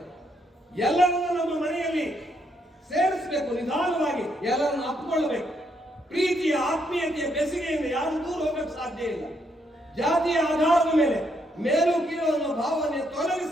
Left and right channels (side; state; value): both; normal; correlation 0.75